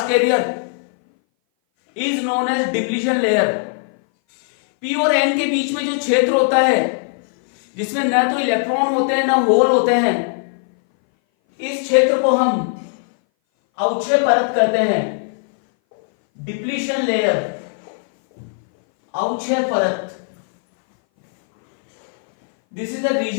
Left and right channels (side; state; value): right; silent; 60 dB below the other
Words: carrier is known as depletion layer। p और n के बीच में जो क्षेत्र होता है, जिसमें न तो इलेक्ट्रॉन होते हैं न होल होते हैं, इस क्षेत्र को हम अवक्षय परत कहते हैं। डिप्लीशन लेयर, अवक्षय परत। This is the